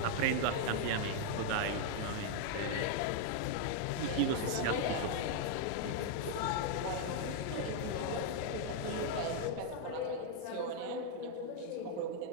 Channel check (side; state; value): both; different; correlation 0.00